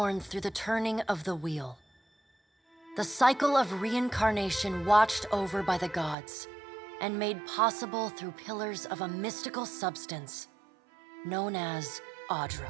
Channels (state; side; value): drops out; left; at 6.2 s